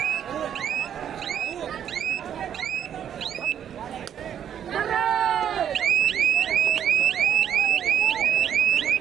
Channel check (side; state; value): left; quieter; 9.3 dB